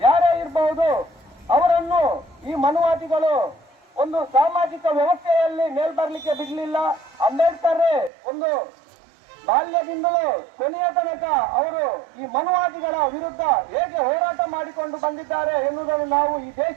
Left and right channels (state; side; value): drops out; left; at 8.1 s